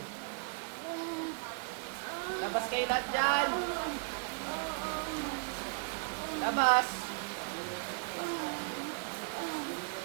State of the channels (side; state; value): left; quieter; 37.8 dB